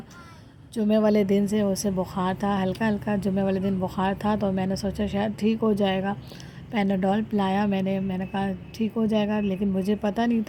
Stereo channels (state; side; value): identical; both; correlation 1.00